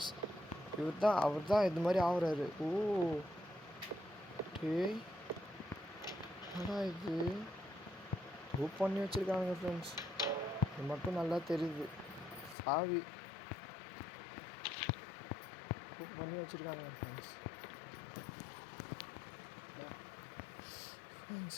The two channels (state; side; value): drops out; right; at 12.6 s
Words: அவர் தான் இது மாதிரி ஆகுறாரு. ஓ டேய் என்னடா இது? ரூப் பண்ணி வச்சுருக்கானுங்க ஃப்ரெண்ட்ஸ். இது மட்டும் நல்லா தெரியுது. சாவி ரூப் பண்ணி வச்சுருக்கானுங்க ஃப்ரெண்ட்ஸ்.